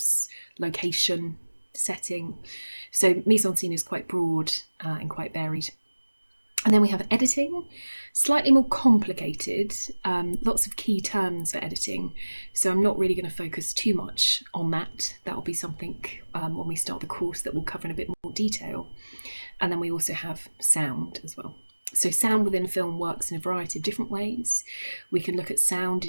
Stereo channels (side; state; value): both; inverted; correlation -1.00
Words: location, setting. So mise-en-scene is quite broad and quite varied. And then we have editing, slightly more complicated, lots of key terms for editing. So I'm not really going to focus too much on that. That will be something when we start the course that we'll cover in a bit more detail. And then we also have sound as well. So sound within film works in a variety of different ways. We can look at sound